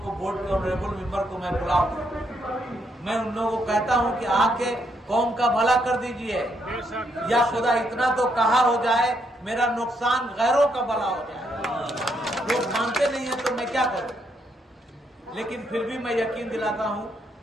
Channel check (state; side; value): normal; both; correlation 0.76